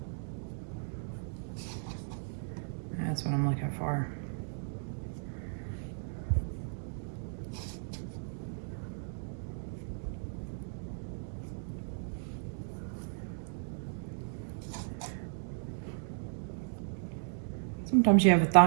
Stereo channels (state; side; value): silent; left; digital silence